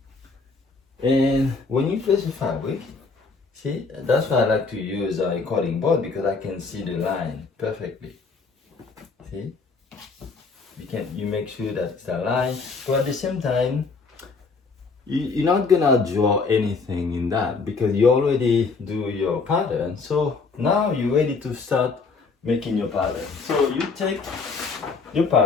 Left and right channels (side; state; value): right; quieter; 4.4 dB